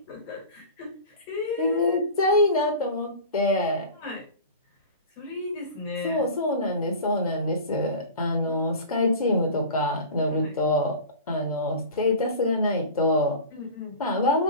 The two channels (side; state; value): both; inverted; correlation -0.35